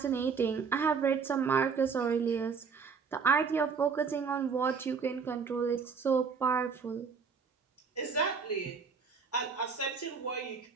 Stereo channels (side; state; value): left; quieter; 5.7 dB